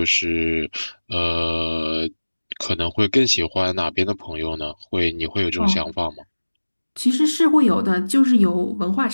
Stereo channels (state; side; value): inverted; both; correlation -1.00